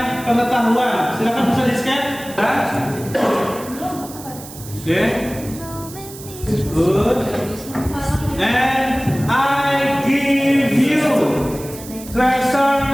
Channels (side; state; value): right; noise; hiss, 15 dB below the sound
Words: pengetahuan. Silakan bisa di-scan. Oke. Good. And I give you